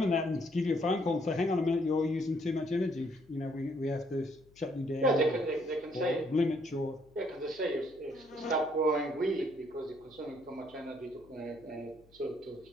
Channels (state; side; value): noise; left; hum, 28 dB below the sound